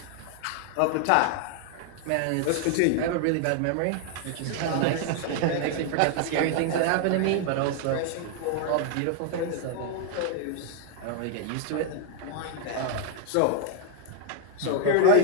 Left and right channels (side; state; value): both; different; correlation 0.00